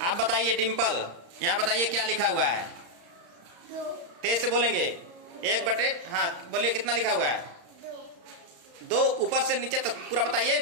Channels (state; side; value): late; left; 35 ms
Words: बताइए। डिम्पल, यहाँ बताइए क्या लिखा हुआ है। तेज से बोलेंगे। 1/, हाँ बोलिए, कितना लिखा हुआ है? 2। ऊपर से नीचे तक पूरा बताइए।